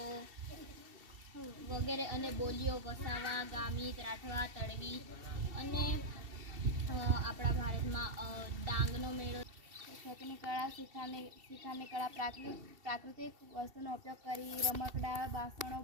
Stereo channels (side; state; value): left; late; 2.7 ms